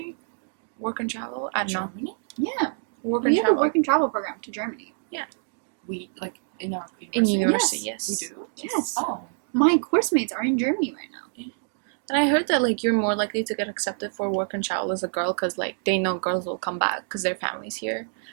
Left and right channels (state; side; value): silent; left; digital silence